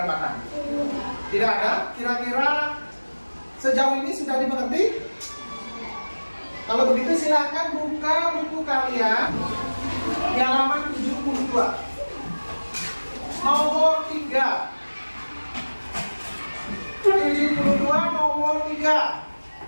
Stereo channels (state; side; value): inverted; both; correlation -1.00